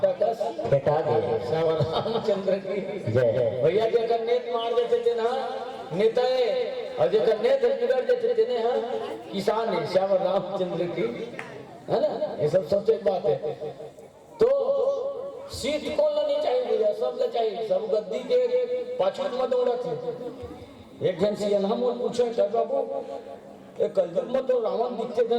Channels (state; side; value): identical; both; correlation 1.00